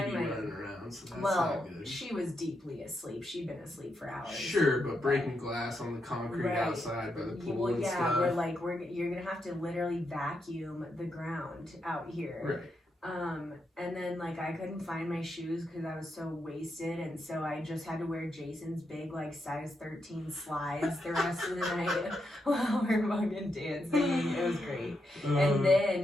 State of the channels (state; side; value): normal; both; correlation 0.83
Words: running around, so that's not good. She was deeply asleep. She'd been asleep for hours. Sure, but breaking glass on the concrete outside by the pool and stuff. We're like, you're gonna have to literally vacuum the ground out here. Right. And then like I couldn't find my shoes because I was so wasted, and so I just had to wear Jason's big like size 13 slides the rest of the night while we're fucking dancing. It was great. And